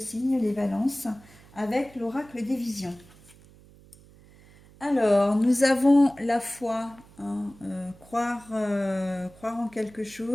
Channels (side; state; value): right; noise; hum, 25 dB below the sound